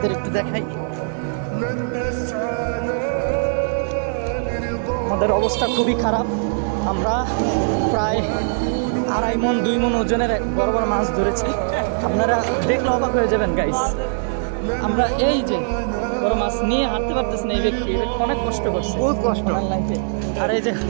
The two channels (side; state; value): left; silent; 65 dB below the other